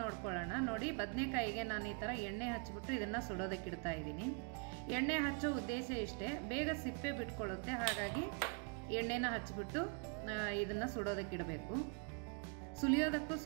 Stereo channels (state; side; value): quieter; left; 35.2 dB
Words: ನೋಡ್ಕೊಳ್ಳೋಣ ನೋಡಿ. ಬದನೆಕಾಯಿಗೆ ನಾನು ಈ ಥರ ಎಣ್ಣೆ ಹಚ್ಚಿಬಿಟ್ಟು ಇದನ್ನು ಸುಡೋದಕ್ಕೆ ಇಡ್ತಾ ಇದ್ದೀನಿ. ಎಣ್ಣೆ ಹಚ್ಚೋ ಉದ್ದೇಶ ಇಷ್ಟೇ, ಬೇಗ ಸಿಪ್ಪೆ ಬಿಟ್ಕೊಳ್ಳುತ್ತೆ, ಹಾಗಾಗಿ ಎಣ್ಣೆನ ಹಚ್ಚಿಬಿಟ್ಟು ಇದನ್ನು ಸುಡೋದಕ್ಕೆ ಇಡಬೇಕು. ಸುಲಿಯೋದಕ್ಕೂ